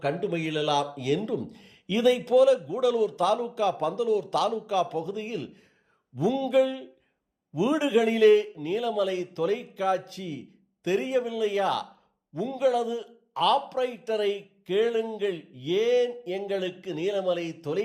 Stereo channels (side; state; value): both; identical; correlation 1.00